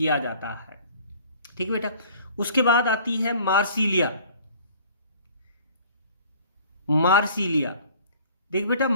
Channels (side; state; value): both; inverted; correlation -0.50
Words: जाता है। ठीक है बेटा। उसके बाद आती है मार्सिलिया। देख बेटा,